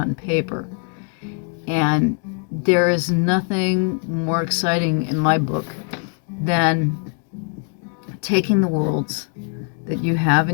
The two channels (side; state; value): right; quieter; 37.7 dB